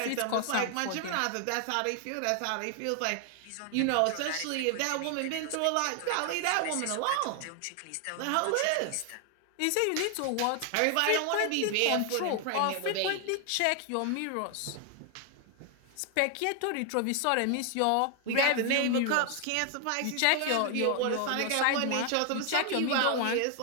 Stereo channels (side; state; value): both; different; correlation 0.00